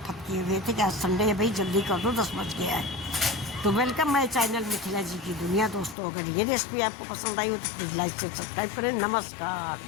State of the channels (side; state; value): right; drops out; at 6.0 s